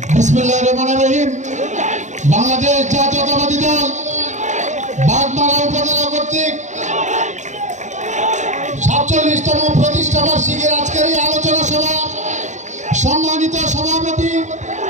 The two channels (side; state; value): left; late; 0.34 ms